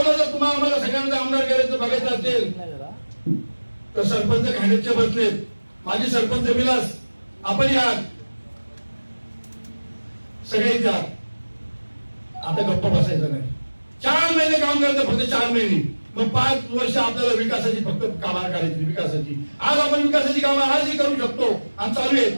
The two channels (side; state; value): both; inverted; correlation -1.00